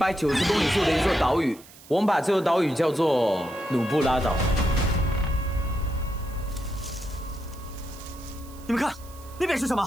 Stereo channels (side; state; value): right; noise; hiss, 22 dB below the sound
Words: 公里处的一座岛屿。我们把这座岛屿叫做努布拉岛。你们看，那边是什么？